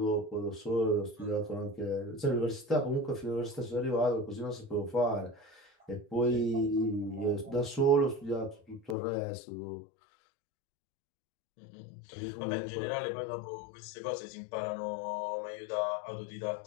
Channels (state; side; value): drops out; right; at 9.0 s